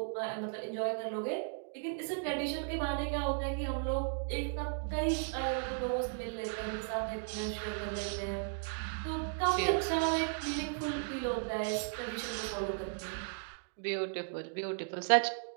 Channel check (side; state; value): left; silent; digital silence